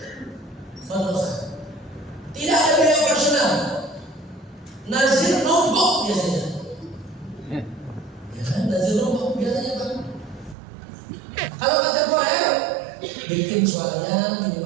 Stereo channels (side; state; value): left; drops out; at 10.6 s